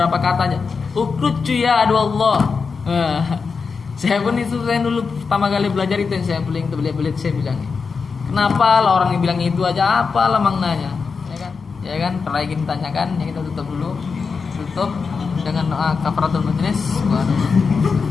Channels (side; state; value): right; quieter; 5.1 dB